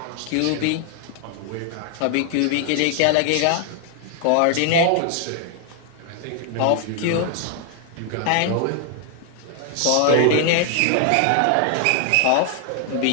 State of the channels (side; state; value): both; different; correlation 0.00